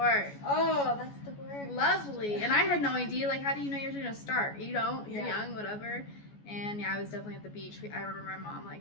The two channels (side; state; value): right; late; 14 ms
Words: Oh, that's the word. Lovely. And I had no idea, like, how do you know you're going to start? You don't. You're Yeah. young, whatever. And yeah, I was definitely at the beach. I remember my mom,